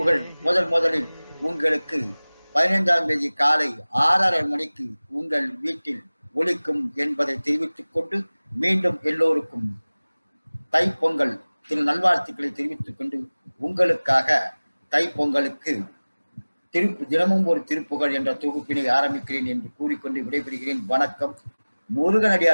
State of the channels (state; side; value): inverted; both; correlation -1.00